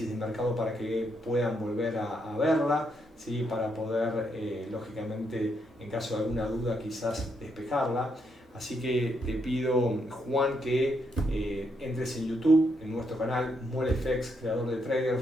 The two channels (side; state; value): both; normal; correlation 0.77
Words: de mercado para que puedan volver a verla, ¿sí?, para poder, lógicamente, en caso de alguna duda, quizás despejarla. Así que te pido, Juan, que entres en YouTube, en nuestro canal MoleFX, creador de